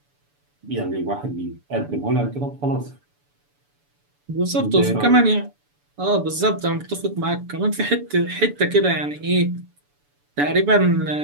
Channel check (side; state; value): left; late; 7.0 ms